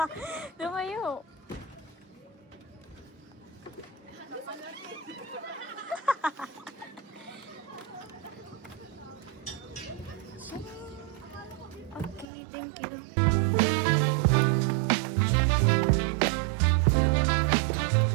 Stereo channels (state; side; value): drops out; left; at 12.2 s